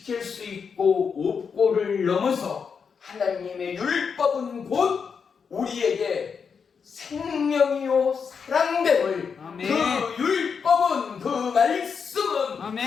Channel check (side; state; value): right; quieter; 6.1 dB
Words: 수 있고 없고를 넘어서 하나님의 율법은 곧 우리에게 생명이요 사랑됨을 아멘. 그 율법은 그 말씀은